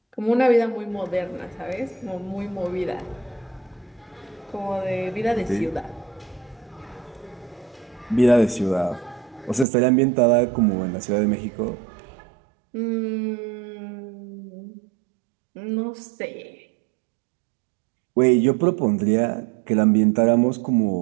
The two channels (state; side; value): drops out; left; at 9.7 s